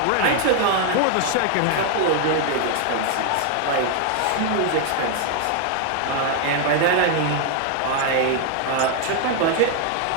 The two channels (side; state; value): both; different; correlation 0.00